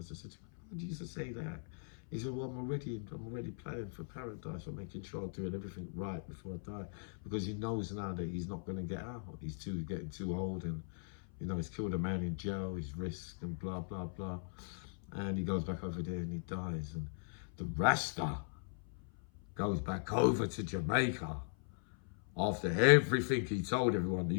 said, why do you used to say that? He said, well, I'm already planning for paradise. I'm making sure I'm doing everything right before I die. Because he knows now that he's not going to get out. He's getting too old, and, you know, he's killed a man in jail, he's risked and blah, blah, blah. And he goes back over there and he dies. And the Rasta goes back over to Jamaica after everything he told everyone.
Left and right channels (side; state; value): right; silent; 52 dB below the other